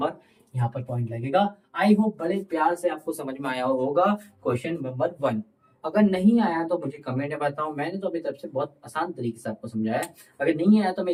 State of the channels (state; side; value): identical; both; correlation 1.00